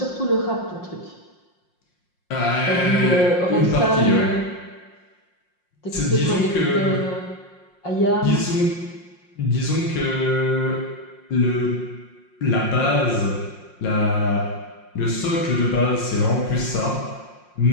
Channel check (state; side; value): late; right; 5.6 ms